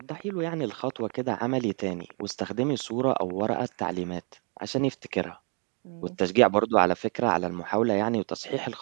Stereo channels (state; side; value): quieter; left; 38.4 dB